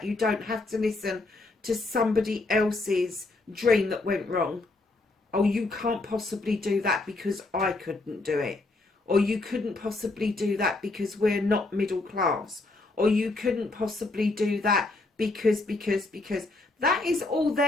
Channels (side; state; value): right; quieter; 3.2 dB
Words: You don't have to listen to somebody else's dream that went wrong. Oh, you can't possibly do that because I couldn't do it. Or you couldn't possibly do that because we're not middle class. Or you couldn't possibly do that because. That is all